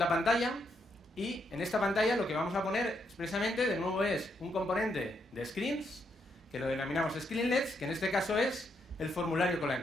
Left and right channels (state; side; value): normal; both; correlation 0.78